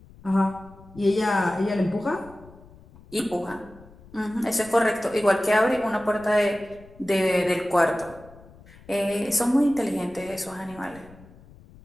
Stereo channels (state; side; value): noise; left; rumble, 23 dB below the sound